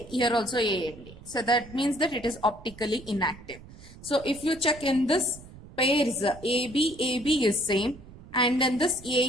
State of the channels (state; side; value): noise; right; rumble, 19 dB below the sound